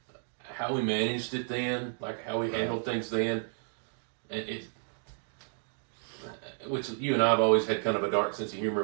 how we managed it then, like how we handled things then. And which you and I have always had kind of a dark sense of humor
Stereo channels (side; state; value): left; silent; digital silence